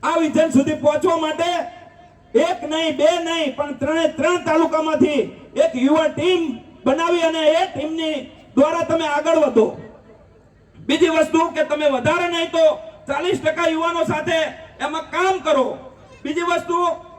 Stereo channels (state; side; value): identical; both; correlation 1.00